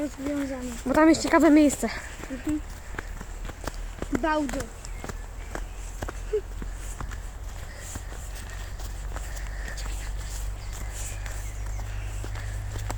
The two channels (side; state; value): both; identical; correlation 1.00